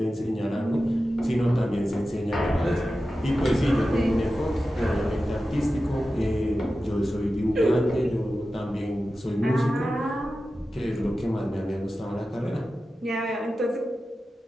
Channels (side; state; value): both; normal; correlation 0.93